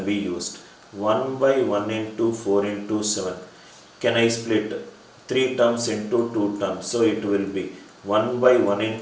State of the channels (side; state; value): both; identical; correlation 1.00